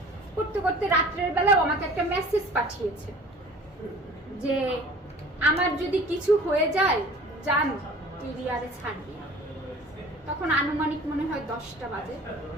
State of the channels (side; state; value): both; normal; correlation 0.46